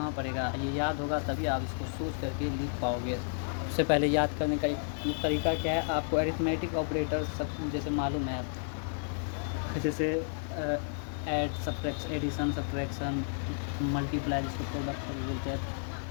पड़ेगा, ये याद होगा तभी आप इसको सोच करके लिख पाओगे। उससे पहले याद करने का एक तरीका क्या है, आपको अरिथमेटिक ऑपरेटर सब जैसे मालूम है, जैसे add, subtraction, addition, subtraction, multiply जिसको प्रोडक्ट भी बोलते हैं,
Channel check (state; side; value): silent; right; digital silence